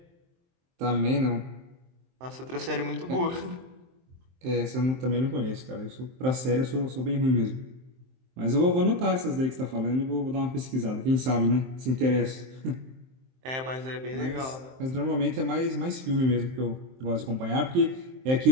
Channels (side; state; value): left; late; 23 ms